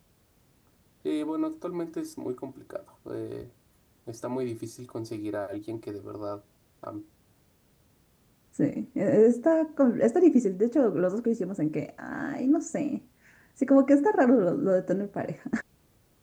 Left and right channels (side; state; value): both; identical; correlation 1.00